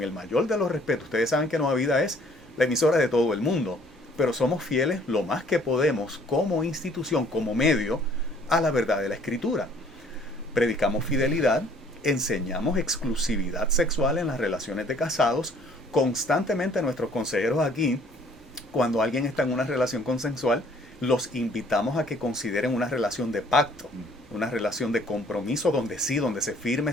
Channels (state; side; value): normal; both; correlation 0.58